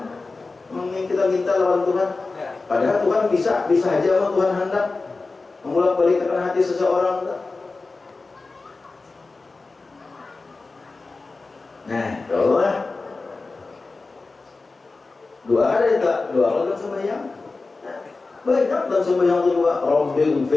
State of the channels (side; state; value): right; quieter; 3.7 dB